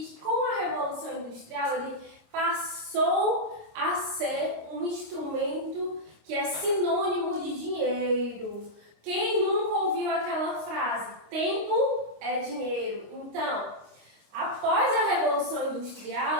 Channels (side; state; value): left; late; 25 ms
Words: que com a Revolução Industrial ele passou a ser um instrumento que é sinônimo de dinheiro. Quem nunca ouviu aquela frase? Tempo é dinheiro. Então, após a Revolução